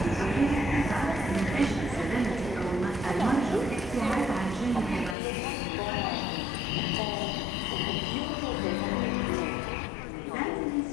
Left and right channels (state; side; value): drops out; right; at 5.2 s